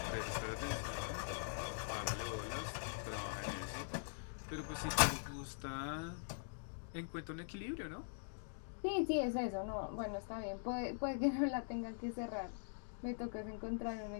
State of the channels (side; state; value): right; silent; digital silence